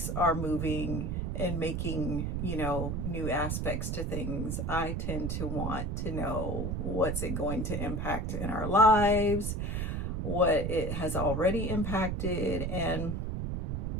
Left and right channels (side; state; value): right; noise; rumble, 1 dB below the sound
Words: are moving and making, new aspects to things, I tend to want to know what's it going to impact in our lives, what it has already impacted, and,